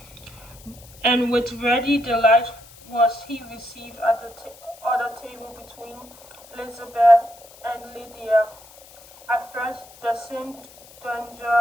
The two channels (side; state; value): left; noise; hiss, 22 dB below the sound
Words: and with ready delight was he received at the other table between Elizabeth and Lydia. At first, there seemed